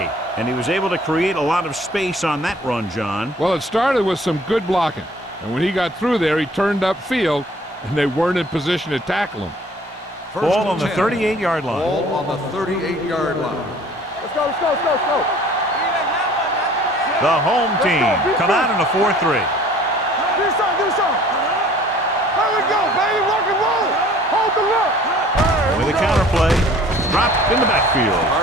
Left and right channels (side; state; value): both; normal; correlation 0.52